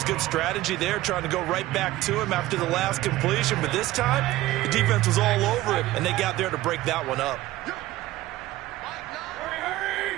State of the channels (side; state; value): left; quieter; 16.5 dB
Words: good strategy there, trying to go right back to him after the last completion. But this time, the defense was all over him, and they got there to break that one up.